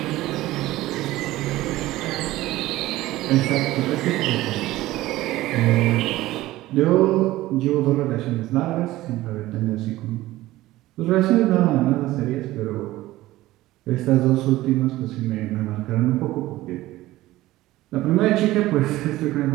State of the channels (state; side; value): quieter; left; 16.9 dB